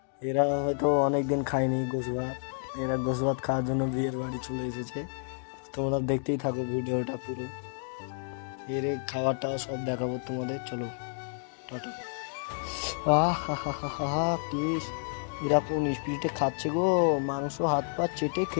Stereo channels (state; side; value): silent; right; 58 dB below the other